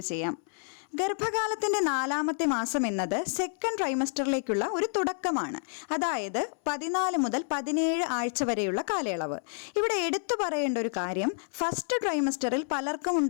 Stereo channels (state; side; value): silent; right; 58 dB below the other